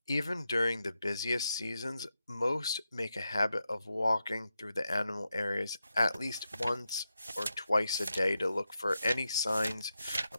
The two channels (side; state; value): both; inverted; correlation -0.88